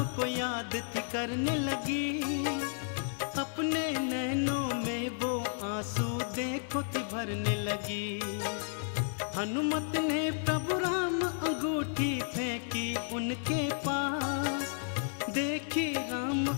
को याद थी करने लगी। अपने नैनों में वो आंसू देखो थी भरने लगी। हनुमत ने प्रभु राम अंगूठी फेंकी उनके पास। देखी राम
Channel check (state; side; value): silent; right; digital silence